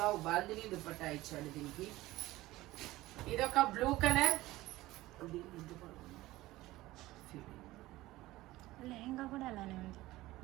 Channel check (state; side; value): quieter; left; 17.7 dB